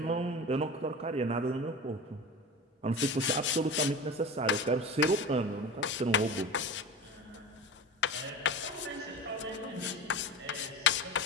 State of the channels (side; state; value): both; normal; correlation 0.30